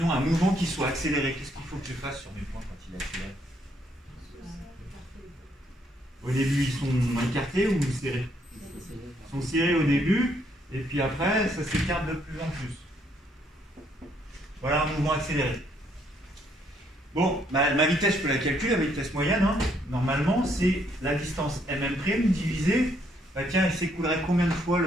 un mouvement qui soit accéléré. Qu'est-ce qu'il faut que je fasse sur mes points quand il est accéléré? Au début ils sont écartés ou serrés? Ils sont serrés au début, et puis après ça s'écarte de plus en plus. Voilà un mouvement accéléré. Bon, ma vitesse, je peux la calculer, la vitesse moyenne. Hein. Normalement, c'est la distance mm' divisée. Bah tiens, il s'écoulerait combien de fois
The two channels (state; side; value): normal; both; correlation 0.70